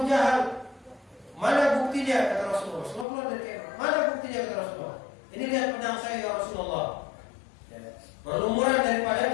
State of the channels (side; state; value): right; drops out; at 3.1 s